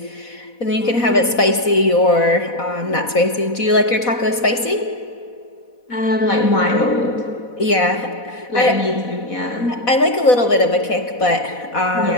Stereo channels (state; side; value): late; right; 4.1 ms